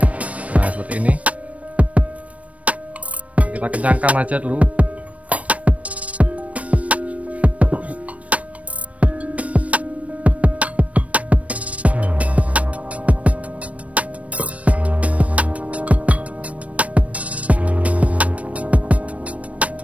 Nah, seperti ini. Kita kencangkan aja dulu.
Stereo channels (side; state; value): left; late; 0.066 ms